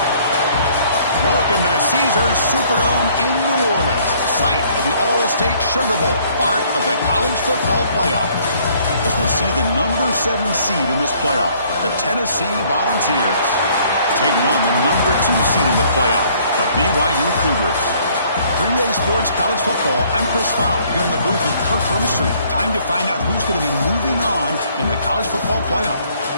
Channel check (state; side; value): inverted; both; correlation -0.61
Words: Welcome to the Caesars Superdome in New Orleans, site of the All-State Sugar Bowl, part of the college football playoff. As we see the number 7 seed in this playoff, the Tennessee Volunteers, taking on the number 2 seed in the playoff, the BYU Cougars. 3A Sports College Football, I'm Chris Fowle, here in the booth with Kirk Herbstreit. Time to find out who's going to be moving on in the college football playoff.